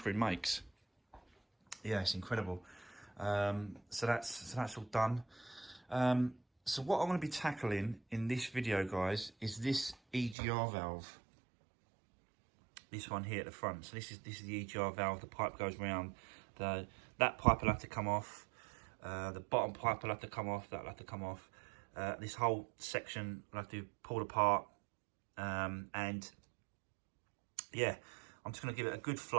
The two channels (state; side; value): drops out; left; at 10.4 s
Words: makes. Yeah, it's incredible. So that's all done. So what I'm going to be tackling in this video, guys, is this EGR valve. This one here at the front. So this is the EGR valve. The pipe goes round. That pipe will have to come off. The bottom pipe will have to come off. That will have to come off. This whole section will have to be pulled apart. And yeah, I'm just going to give it a good